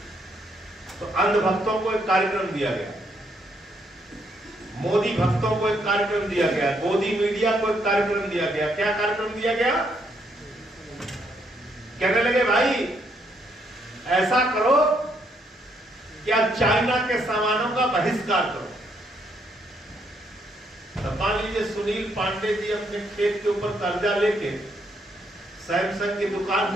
तो अंधभक्तों को एक कार्यक्रम दिया गया, मोदी भक्तों को एक कार्यक्रम दिया गया, मोदी मीडिया को एक कार्यक्रम दिया गया। क्या कार्यक्रम दिया गया? कहने लगे भाई ऐसा करो कि आप चाइना के सामानों का बहिष्कार करो। तो मान लीजिए सुनील पांडे जी अपने खेत के ऊपर कर्जा लेके सैमसंग की दुकान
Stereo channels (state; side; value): normal; both; correlation 0.73